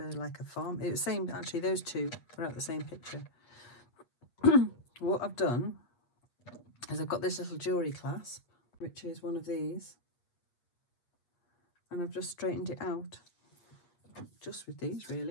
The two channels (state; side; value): late; right; 8.4 ms